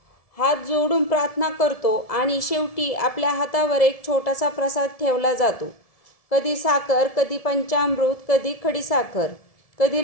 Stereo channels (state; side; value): late; right; 1.7 ms